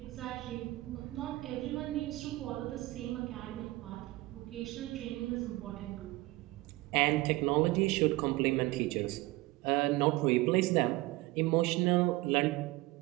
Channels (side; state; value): left; quieter; 20.0 dB